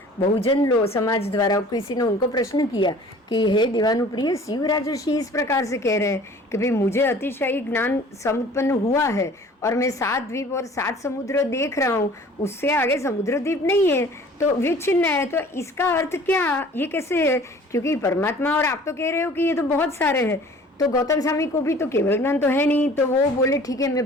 बहुजन समाज द्वारा किसी ने उनको प्रश्न किया कि हे दीवानुप्रिय, शिव राजर्षि इस प्रकार से कह रहे हैं कि भाई मुझे अतिशय ज्ञान संपन्न हुआ है और मैं 7 द्वीप और 7 समुद्र देख रहा हूँ, उससे आगे समुद्र द्वीप नहीं है, तो विच्छिन्न है, तो इसका अर्थ क्या, ये कैसे है? क्योंकि परमात्मा और आप तो कह रहे हो कि ये तो बहुत सारे हैं, तो गौतम स्वामी को भी तो केवल ज्ञान तो है नहीं। तो वो बोले ठीक है, मैं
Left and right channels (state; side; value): normal; both; correlation 0.48